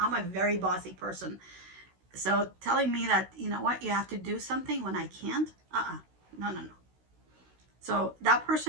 a very bossy person. So telling me that, you know what, you have to do something when I can't, no, no, no. So that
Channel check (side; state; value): left; late; 16 ms